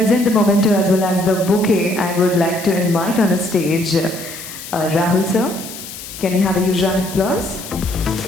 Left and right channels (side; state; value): left; noise; hiss, 12 dB below the sound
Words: the memento as well as the bouquet, I would like to invite on a stage Rahul sir. Can we have a huge round of applause?